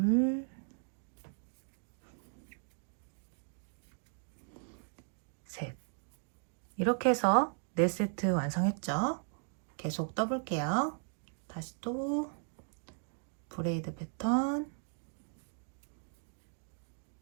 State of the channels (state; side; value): silent; left; 53 dB below the other